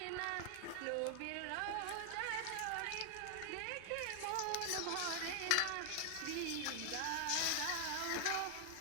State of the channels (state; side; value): different; both; correlation 0.00